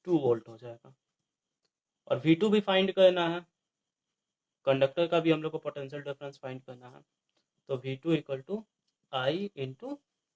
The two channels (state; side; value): identical; both; correlation 1.00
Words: 2 वोल्ट हो जाएगा। और V2 भी फाइंड करना है, कंडक्टर का भी हम लोग को पोटेंशियल डिफरेंस फाइंड करना है। तो V2 equal to I into